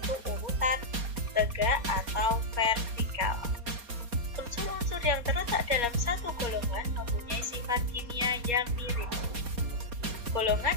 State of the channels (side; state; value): left; late; 4.2 ms